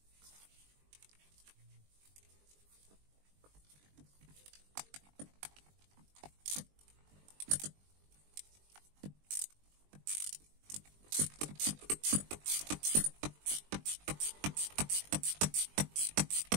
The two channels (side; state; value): left; late; 20 ms